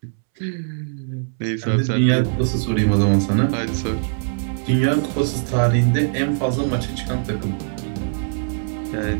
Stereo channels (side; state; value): left; silent; 65 dB below the other